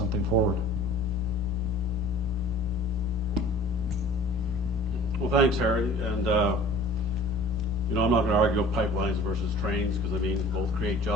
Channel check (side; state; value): both; normal; correlation 0.45